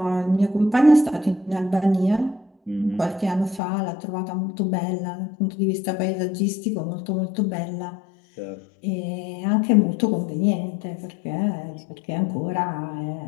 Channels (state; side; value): drops out; right; at 3.6 s